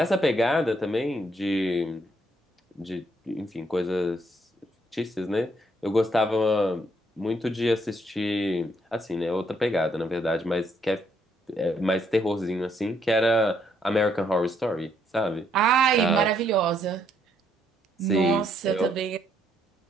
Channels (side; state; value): both; normal; correlation 0.72